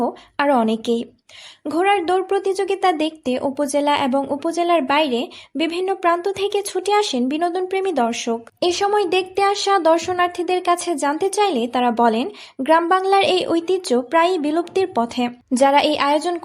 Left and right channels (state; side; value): identical; both; correlation 1.00